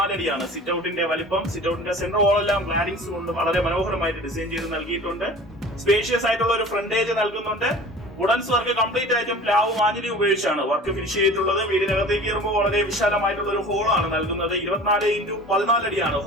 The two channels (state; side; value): normal; both; correlation 0.41